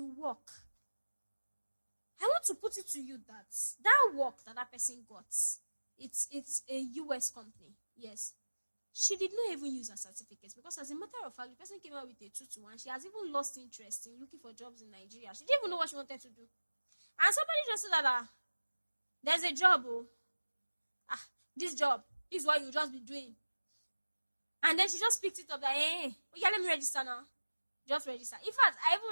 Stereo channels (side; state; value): both; inverted; correlation -1.00